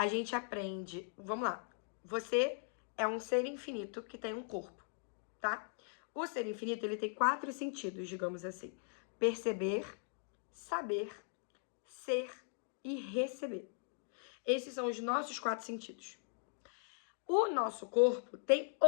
gente aprende... Vamos lá. Você é um ser infinito que tem um corpo, tá? O ser infinito, ele tem 4 sentidos, digamos assim. Perceber, saber, ser e receber. Esses são os nossos 4 sentidos. O nosso corpo tem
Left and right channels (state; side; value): silent; right; digital silence